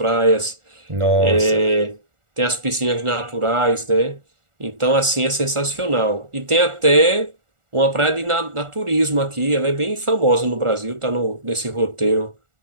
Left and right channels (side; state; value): left; late; 1.4 ms